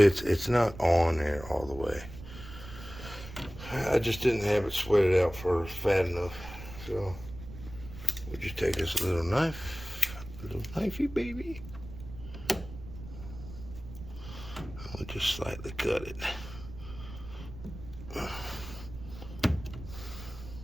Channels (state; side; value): noise; right; rumble, 13 dB below the sound